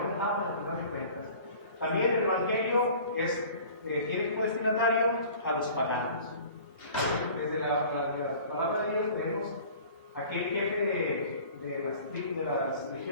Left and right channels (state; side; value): inverted; both; correlation -0.45